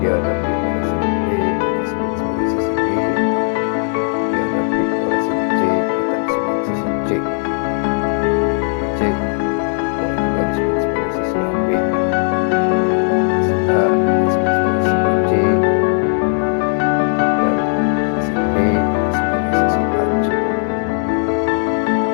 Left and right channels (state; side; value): silent; right; 59 dB below the other